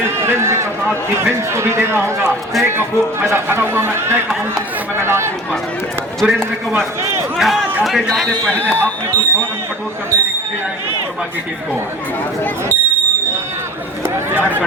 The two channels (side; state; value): both; normal; correlation 0.40